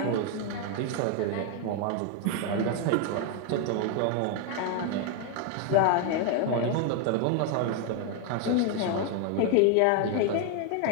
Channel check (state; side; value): different; both; correlation 0.01